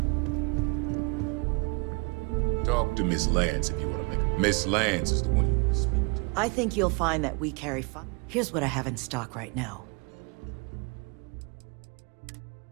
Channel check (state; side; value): quieter; left; 31.1 dB